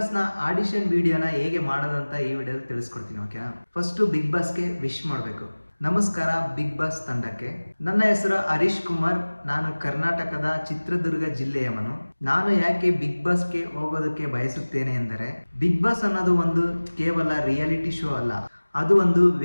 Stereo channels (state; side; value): inverted; both; correlation -1.00